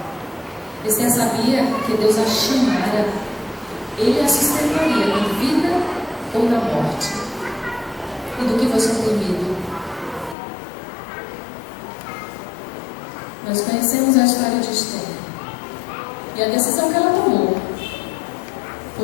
Esther sabia que Deus a chamara, Ele a sustentaria na vida ou na morte. E do que você tem medo? Nós conhecemos a história de Esther. E a decisão que ela tomou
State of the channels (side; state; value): right; drops out; at 10.4 s